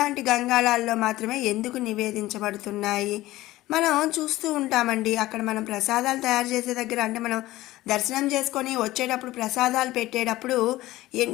గంగాళాల్లో మాత్రమే ఎందుకు నివేదించబడుతున్నాయి మనం చూస్తూ ఉంటామండి. అక్కడ మనం ప్రసాదాలు తయారు చేసే దగ్గర, అంటే మనం దర్శనం చేసుకొని వచ్చేటప్పుడు ప్రసాదాలు పెట్టేటప్పుడు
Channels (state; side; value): quieter; right; 16.9 dB